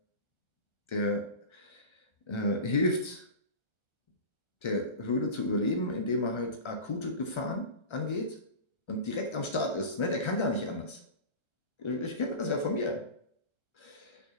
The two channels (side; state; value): right; late; 1.3 ms